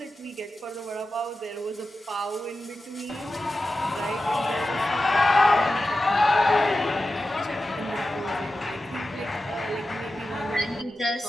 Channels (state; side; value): normal; both; correlation 0.92